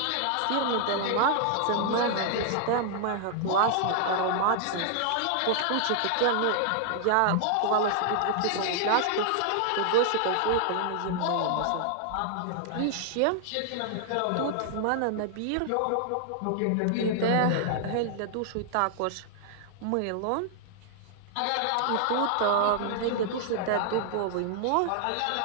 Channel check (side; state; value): both; different; correlation 0.00